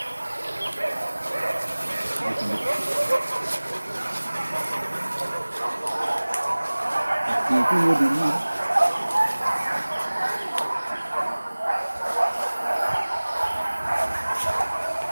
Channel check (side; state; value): both; inverted; correlation -1.00